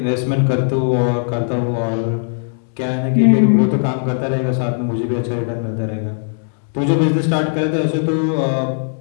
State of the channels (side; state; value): right; silent; 67 dB below the other